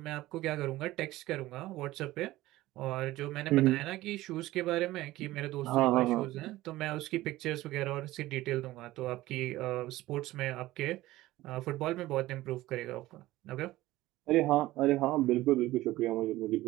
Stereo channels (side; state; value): left; quieter; 17.0 dB